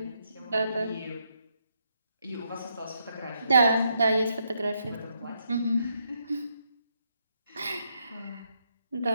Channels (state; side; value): inverted; both; correlation -0.78